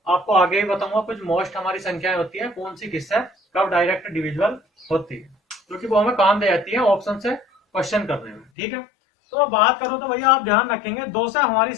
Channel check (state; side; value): drops out; right; at 8.5 s